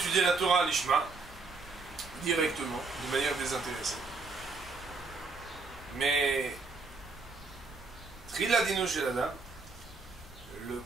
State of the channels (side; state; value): left; quieter; 4.0 dB